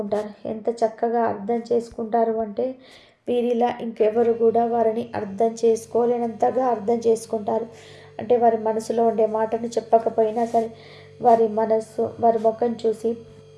ఎంత చక్కగా అర్థం చేసుకుంటారు అంటే వీరిలా ఇంకెవరు కూడా వారిని అర్థం చేసుకోలేనంతగా అర్థం చేసుకుంటారు. అంటే వారి మనసులో ఉండే మాటను చెప్పకపోయినా సరే వారి మనస్సు, వారి ముఖం చూసి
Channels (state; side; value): identical; both; correlation 1.00